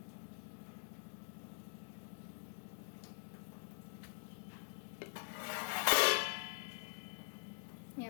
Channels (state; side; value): silent; right; digital silence